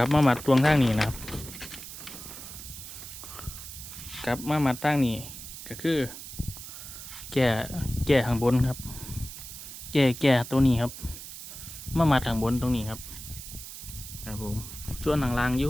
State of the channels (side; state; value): right; noise; hiss, 12 dB below the sound